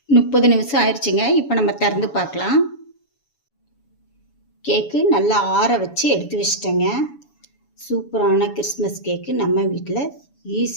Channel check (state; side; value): late; right; 7.1 ms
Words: 30 நிமிஷம் ஆயிடுச்சுங்க. இப்போ நம்ம திறந்து பார்க்கலாம். கேக்கு நல்லா ஆற வச்சு எடுத்து வச்சிட்டேங்க. சூப்பரான கிறிஸ்மஸ் கேக்கு நம்ம வீட்டில்